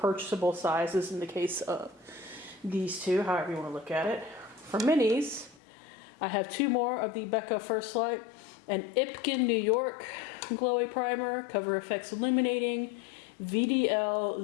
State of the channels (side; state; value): right; drops out; at 5.6 s